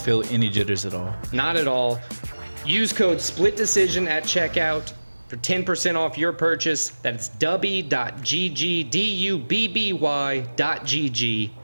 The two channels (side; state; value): both; inverted; correlation -1.00